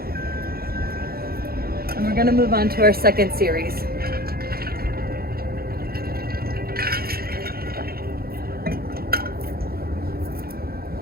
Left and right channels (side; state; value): left; late; 0.44 ms